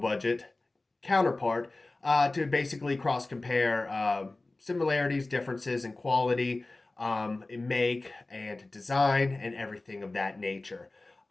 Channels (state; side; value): quieter; right; 3.0 dB